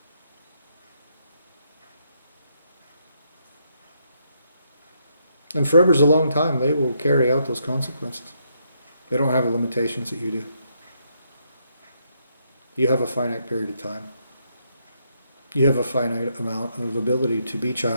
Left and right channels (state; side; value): inverted; both; correlation -0.76